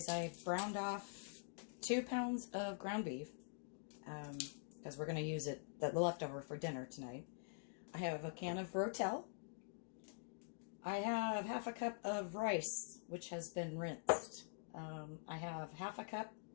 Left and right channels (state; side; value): silent; right; digital silence